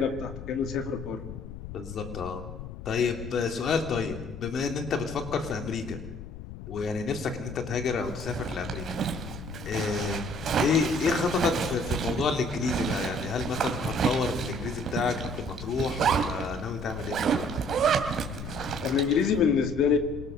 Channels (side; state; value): left; noise; rumble, 11 dB below the sound